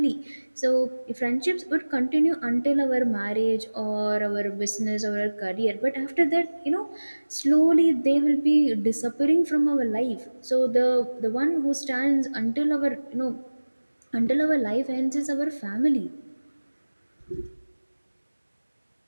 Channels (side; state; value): both; inverted; correlation -1.00